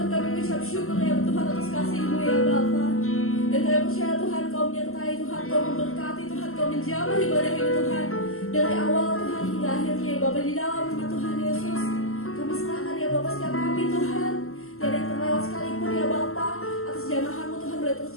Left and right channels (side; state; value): right; late; 0.62 ms